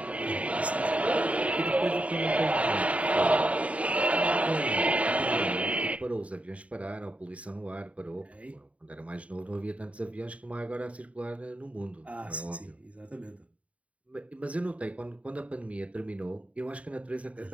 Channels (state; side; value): late; left; 0.066 ms